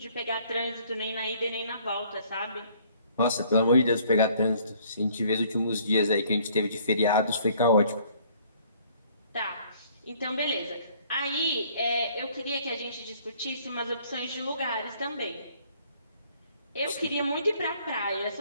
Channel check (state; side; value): inverted; both; correlation -0.59